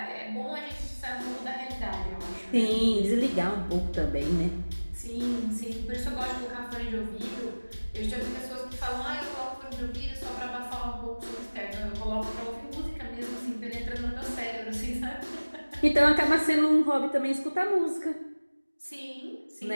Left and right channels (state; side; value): inverted; both; correlation -1.00